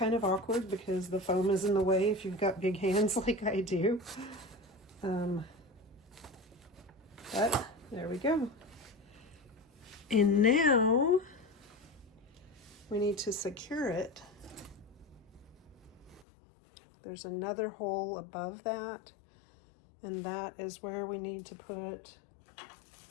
of awkward because the foam is in the way if you've got big hands like I do. But there we go. And now we need to secure it. There's another hole above that, and that is where we need to put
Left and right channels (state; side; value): drops out; right; at 16.2 s